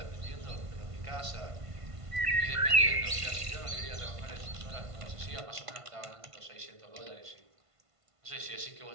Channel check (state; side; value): late; left; 1.5 ms